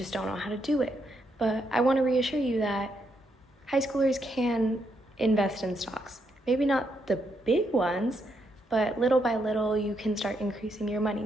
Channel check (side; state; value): both; normal; correlation 0.78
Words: don't know how to do it. But I want to reassure you that high schoolers can invest in stocks. Maybe not the big ones, but little by little you can start increasing your money.